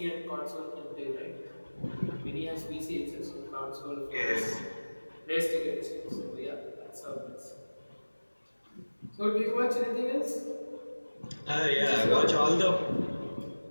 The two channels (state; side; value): inverted; both; correlation -1.00